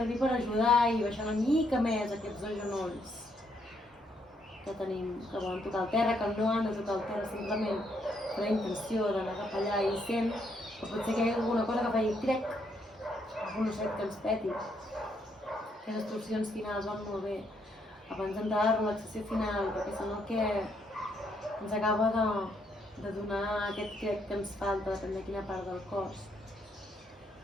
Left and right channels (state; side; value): normal; both; correlation 0.74